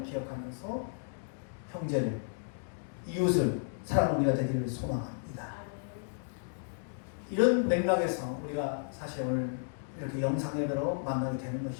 기억하면서 형제를, 이웃을 사랑하는 우리가 되기를 소망합니다. 이런 맥락에서 우리가 사실 오늘 이렇게 영상 예배로 만나게 되는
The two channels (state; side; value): silent; right; digital silence